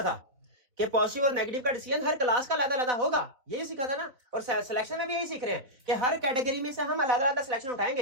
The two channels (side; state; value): left; late; 4.0 ms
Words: था कि पॉजिटिव और नेगेटिव का डिसीजन हर क्लास का अलग-अलग होगा, यही सीखा था ना। और सिलेक्शन में भी यही सीख रहे हैं कि हर कैटेगरी में से हम अलग-अलग सिलेक्शन